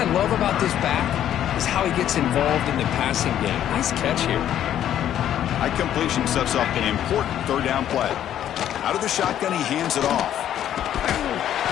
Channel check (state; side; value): quieter; right; 10.9 dB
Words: love about this back is how he gets involved in the passing game. Nice catch here. High completion sets up an important 3rd down play. Out of the shotgun, he hands it off.